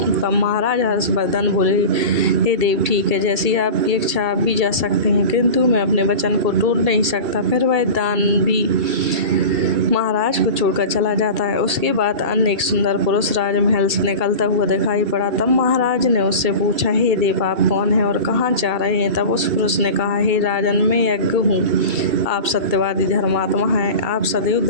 तब महाराज हर्षवर्धन बोले, हे देव, ठीक है, जैसी आपकी इच्छा आप भी जा सकते हैं, किंतु मैं अपने वचन को तोड़ नहीं सकता। फिर वह दान भी महाराज को छोड़कर चला जाता है। उसके बाद अन्य एक सुंदर पुरुष राजमहल से निकलता हुआ दिखाई पड़ा। तब महाराज ने उससे पूछा, हे देव, आप कौन हैं और कहाँ जा रहे हैं? तब उस पुरुष ने कहा, हे राजन, मैं यज्ञ हूँ। आप सत्यवादी धर्मात्मा हैं, आप सदैव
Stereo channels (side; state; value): left; late; 2.3 ms